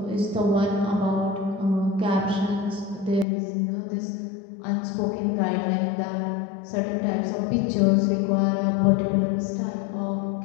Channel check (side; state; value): right; drops out; at 3.2 s